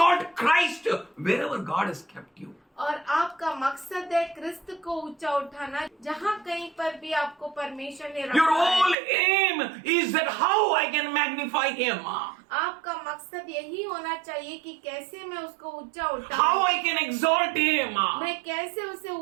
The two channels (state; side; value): drops out; left; at 9.0 s